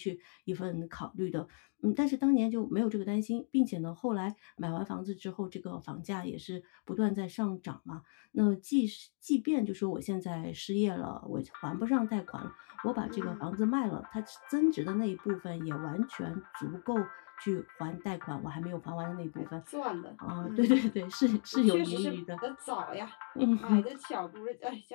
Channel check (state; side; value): silent; right; 54 dB below the other